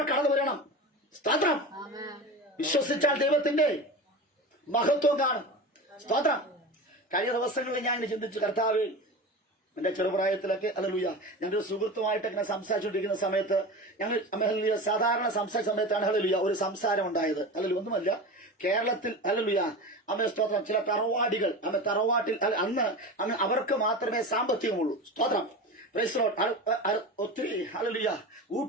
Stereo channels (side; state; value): both; normal; correlation 0.29